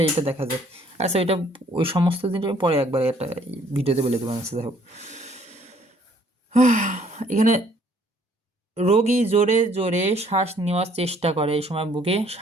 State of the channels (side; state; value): both; normal; correlation 0.61